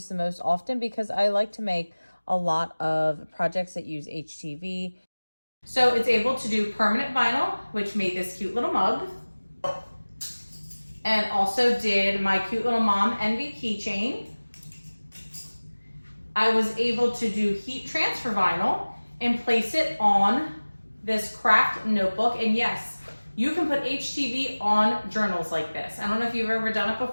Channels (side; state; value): both; inverted; correlation -1.00